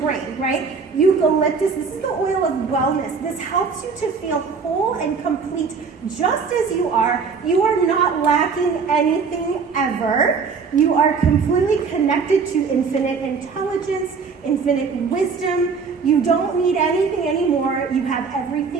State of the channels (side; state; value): left; quieter; 5.3 dB